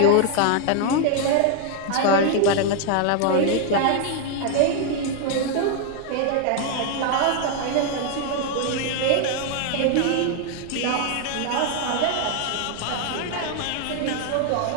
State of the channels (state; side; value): different; both; correlation 0.00